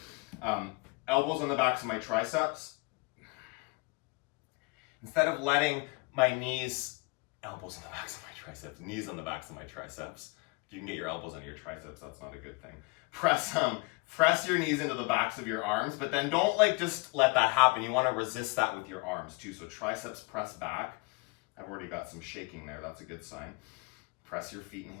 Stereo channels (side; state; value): right; quieter; 29.2 dB